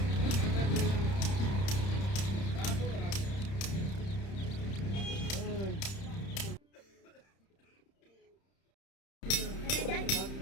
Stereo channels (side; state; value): right; late; 31 ms